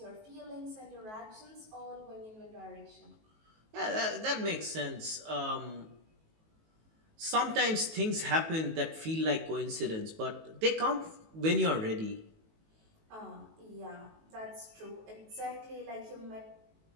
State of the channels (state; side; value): late; left; 19 ms